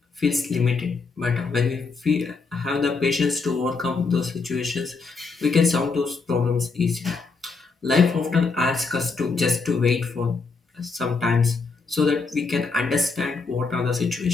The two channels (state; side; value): quieter; right; 4.4 dB